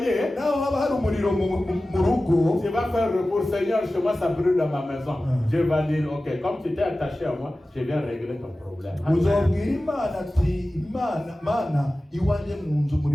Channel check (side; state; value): both; normal; correlation 0.96